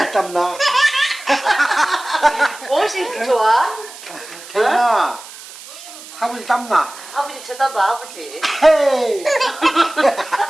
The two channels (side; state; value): right; noise; hiss, 16 dB below the sound